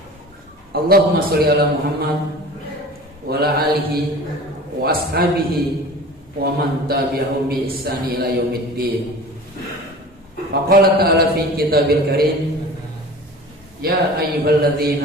Allahumma sholli ala Muhammad wa ala alihi wa ashabihi wa man tabi'ahum bi ihsani ila yaumiddin. Wa qala ta'ala fi kitabil karim, ya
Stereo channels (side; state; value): both; normal; correlation 0.39